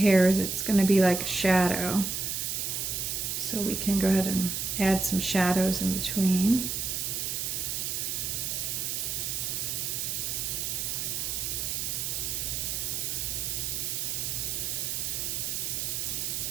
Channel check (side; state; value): right; noise; hiss, 1 dB below the sound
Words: it's going to be like a shadow. So we can go ahead and add some shadows in between.